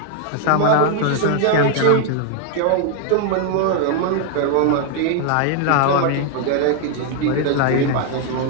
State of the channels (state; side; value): different; both; correlation 0.00